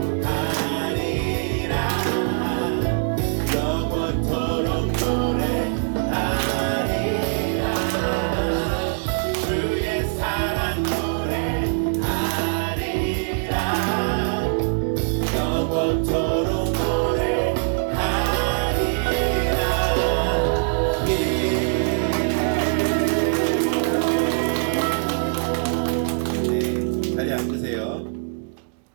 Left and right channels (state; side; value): silent; left; digital silence